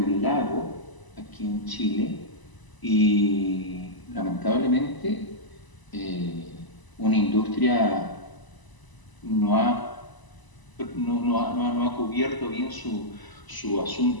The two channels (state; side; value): late; right; 1.0 ms